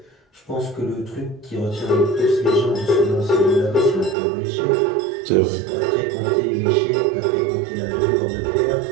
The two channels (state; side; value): drops out; left; at 4.2 s